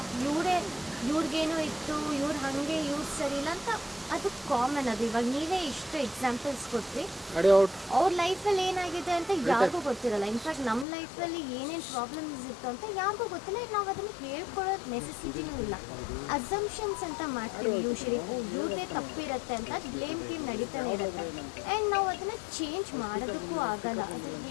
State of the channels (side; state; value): right; drops out; at 10.9 s